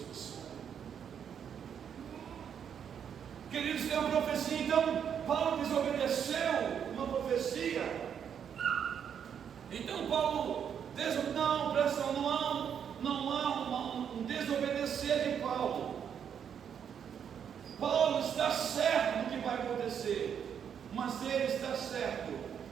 Queridos, tem uma profecia. Então Paulo desobedeceu uma profecia. Então Paulo não, presta atenção, não há um desobedecer de Paulo. Paulo está certo no que vai acontecer, mas ele está certo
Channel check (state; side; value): quieter; left; 8.1 dB